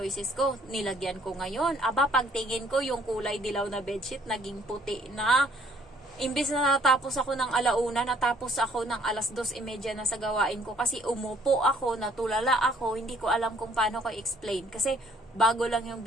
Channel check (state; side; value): normal; both; correlation 0.62